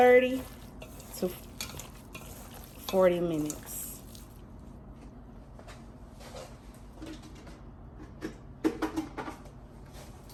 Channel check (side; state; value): both; identical; correlation 1.00